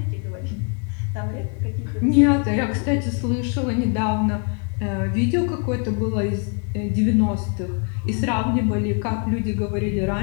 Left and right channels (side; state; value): right; quieter; 38.1 dB